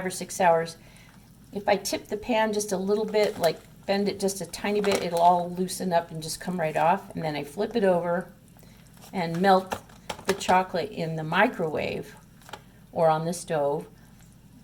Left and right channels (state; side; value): identical; both; correlation 1.00